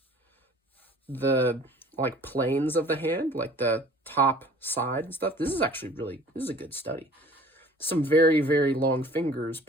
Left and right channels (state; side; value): normal; both; correlation 0.49